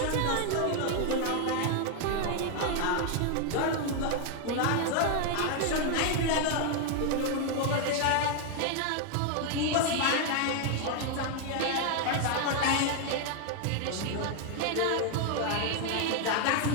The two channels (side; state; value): both; different; correlation 0.00